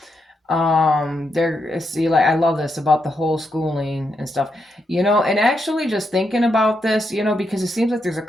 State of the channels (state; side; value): normal; both; correlation 0.82